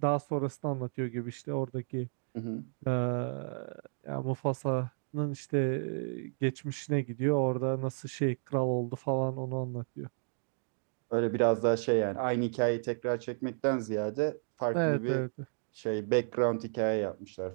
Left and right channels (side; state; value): left; silent; digital silence